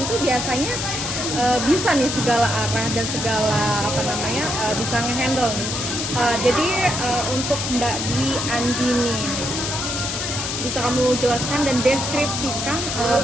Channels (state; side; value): noise; left; hiss, 3 dB below the sound